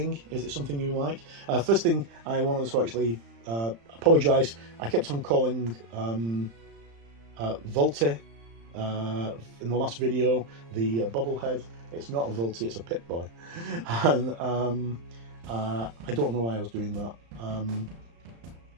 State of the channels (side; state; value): left; late; 35 ms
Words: Is it something you like? First thing, I wanted to actually apologise. I kept on calling Volty in the last video the bobblehead. It's not a Volty, it's a Pip-Boy. And I don't know why I was doing that.